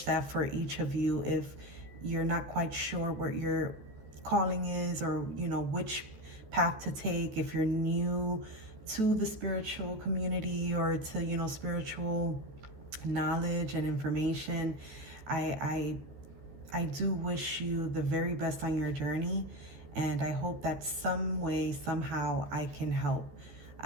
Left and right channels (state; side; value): late; left; 14 ms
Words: that for each of you, if you're not quite sure what your calling is, or, you know, which path to take, if you're new to the spiritual community or to, you know, spiritual knowledge and information, I do wish you the very best on your journey, and I hope that some way, somehow, I can help